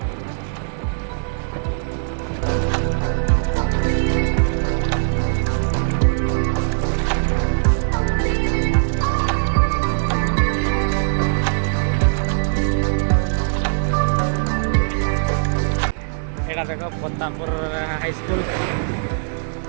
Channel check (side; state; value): left; silent; 65 dB below the other